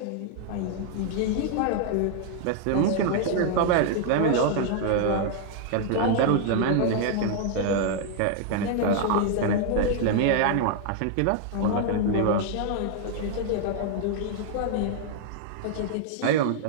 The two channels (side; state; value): both; different; correlation 0.00